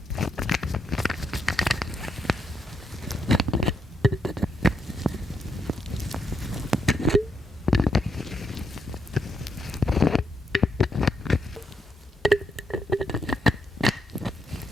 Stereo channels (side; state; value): both; normal; correlation 0.79